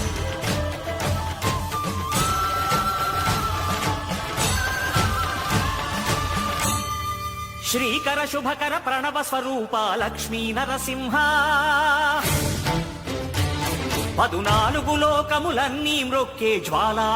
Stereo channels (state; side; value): identical; both; correlation 1.00